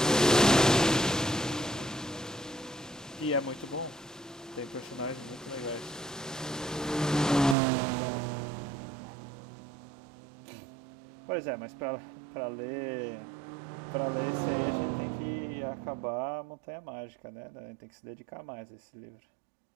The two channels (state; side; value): drops out; left; at 7.6 s